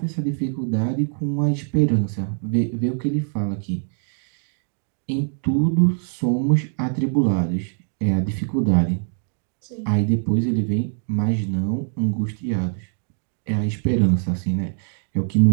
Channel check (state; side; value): silent; left; 63 dB below the other